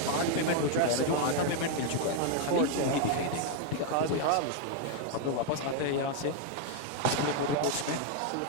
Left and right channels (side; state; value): both; different; correlation 0.00